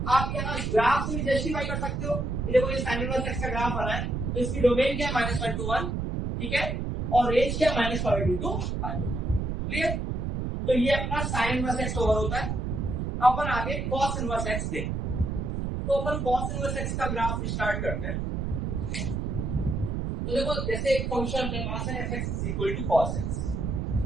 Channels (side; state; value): right; noise; rumble, 2 dB below the sound